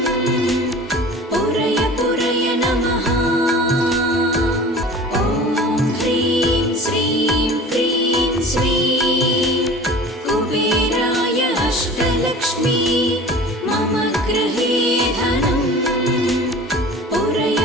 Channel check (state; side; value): normal; both; correlation 0.41